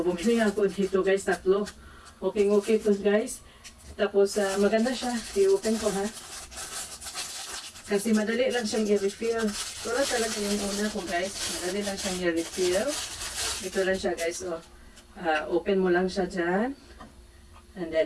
bumili ako dito guys, tatlo. Okay to guys. Tapos maganda siya. I-open ko ha. Kasi madali lang siyang i-refill. Wala talaga yung una ko guys. Madali lang siyang i-refill. Ito lang siya guys. So, open mo lang siya dyan. And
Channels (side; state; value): both; identical; correlation 1.00